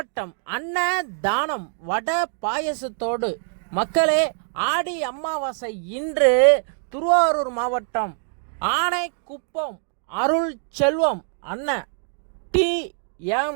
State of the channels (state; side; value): silent; left; 63 dB below the other